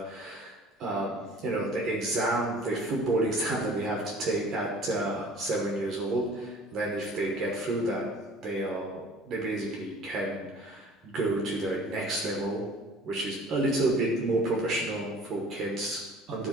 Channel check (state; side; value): normal; both; correlation 0.48